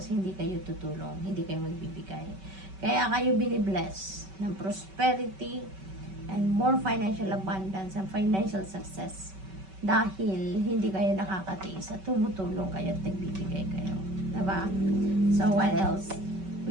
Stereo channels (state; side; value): late; left; 5.2 ms